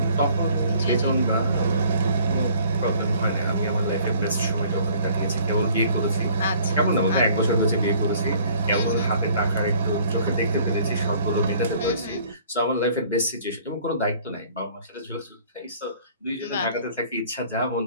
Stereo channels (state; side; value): inverted; both; correlation -0.55